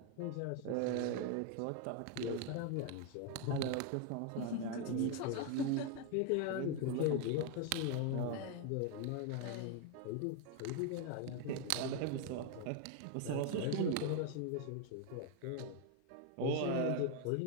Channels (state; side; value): different; both; correlation 0.01